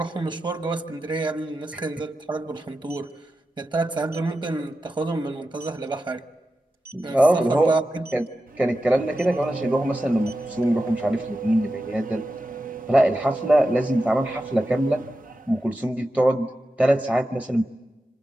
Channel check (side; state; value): both; normal; correlation 0.91